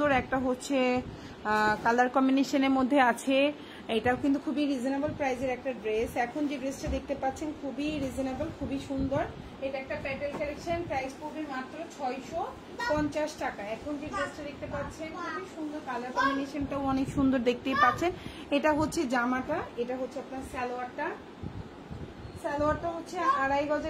একটা হচ্ছে কালার কম্বিনেশনের মধ্যে আছে। এটাও কিন্তু খুবই রিজনেবল প্রাইসের একটা ড্রেস। এখন যে ড্রেসটা দেখতে পাচ্ছেন খুবই রিজনেবল, খুবই সুন্দর। এটা একটা প্যাটেল কালেকশন, প্রাইস পড়বে মাত্র 650 টাকা। এখন যে ড্রেসটা দেখতে পাচ্ছেন খুবই সুন্দর, কালার কম্বিনেশনটাও অনেক সুন্দর, দেখতেই পাচ্ছেন। এটা হচ্ছে জামাটা, এটা হচ্ছে আপনার সালোয়ারটা। সালোয়ারটা হচ্ছে 2.5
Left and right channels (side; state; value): both; identical; correlation 1.00